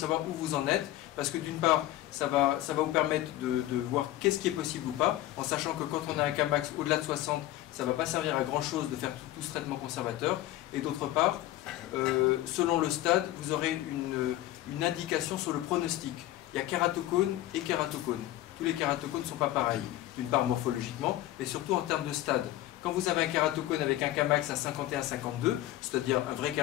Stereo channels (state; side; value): quieter; right; 15.1 dB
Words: où vous en êtes, parce que d'une part, ça va vous permettre de voir qu'est-ce qui est possible ou pas, en sachant que quand on a un Kmax au-delà de 60, ça ne va pas servir à grand chose de faire tout ce traitement conservateur, et d'autre part, selon le stade, vous aurez une indication sur le pronostic. Il y a kératocone et kératocone. Tous les kératocones ne sont pas pareils, d'une part morphologiquement, mais surtout en termes de stade. Quand vous avez un kératocone avec un Kmax à 51-52, c'est-à-dire un vrai